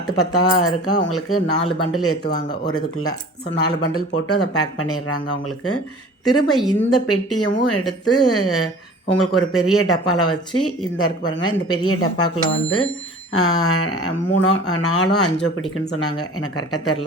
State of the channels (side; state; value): both; normal; correlation 0.43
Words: 10 இருக்கா அவங்களுக்கு 4 பண்டில் ஏற்றுவாங்க ஒரு இதுக்குள்ளே. ஸோ 4 பண்டில் போட்டு அதை பேக் பண்ணிடுறாங்க அவங்களுக்கு. திரும்ப இந்த பெட்டியவும் எடுத்து உங்களுக்கு ஒரு பெரிய டப்பாவில் வச்சு இந்த இருக்கு பாருங்கள், இந்த பெரிய டப்பாக்குள்ளே வந்து 3 4 5 பிடிக்குன்னு சொன்னாங்க, எனக்கு கரெக்டாக